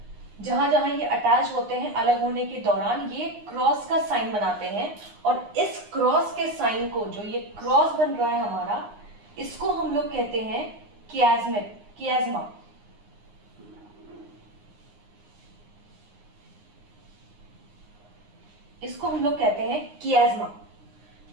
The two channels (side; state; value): left; late; 9.7 ms